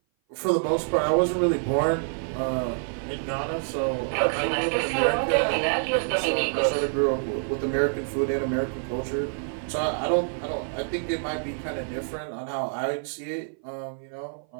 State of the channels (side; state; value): left; silent; 57 dB below the other